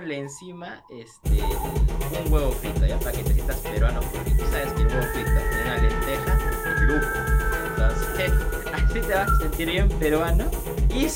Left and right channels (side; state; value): both; identical; correlation 1.00